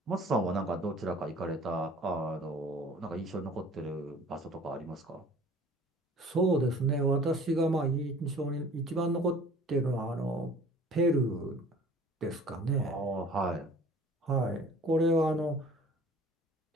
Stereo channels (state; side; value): normal; both; correlation 0.48